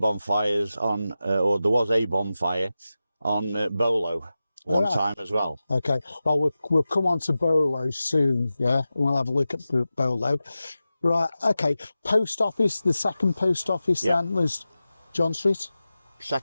on, or there was a bonfire on Bolo one time as well. Okay, well, we'll come on to Bolo soon, yeah? We'll have a look at Bolo. Right, okay. Post office, the second post office then was John Street?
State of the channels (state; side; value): inverted; both; correlation -0.94